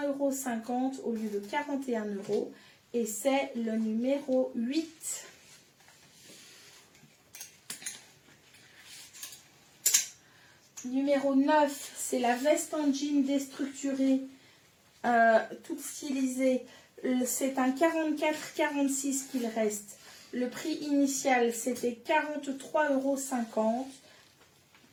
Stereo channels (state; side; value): identical; both; correlation 1.00